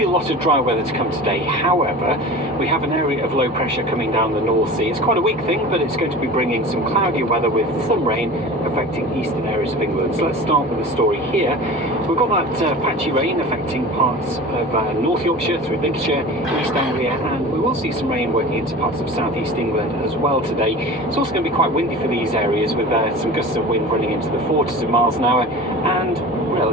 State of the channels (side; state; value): both; normal; correlation 0.36